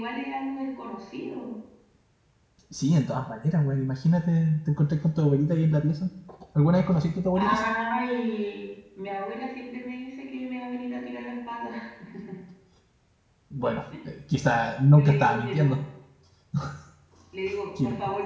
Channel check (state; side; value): identical; both; correlation 1.00